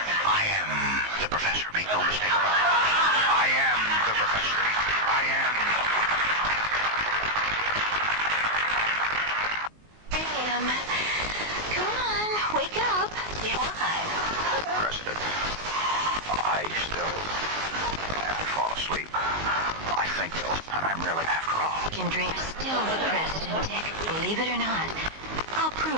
am the Professor. Make no mistake about it. I am the Professor. I am... Come on, wake up. Why? President, I still fall asleep. I think, though, and I'm really, after all... Can dream still the president, Dick. Believe it or not. I'll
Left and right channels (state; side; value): late; left; 19 ms